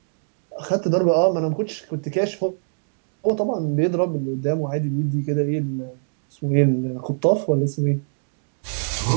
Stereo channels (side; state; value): left; silent; digital silence